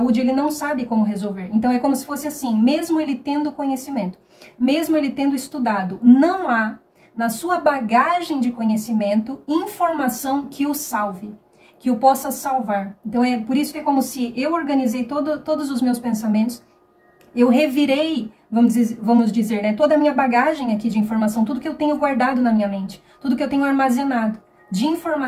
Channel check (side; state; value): both; identical; correlation 1.00